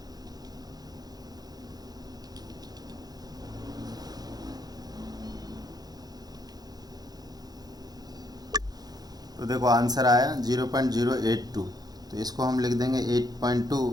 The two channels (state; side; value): late; left; 0.19 ms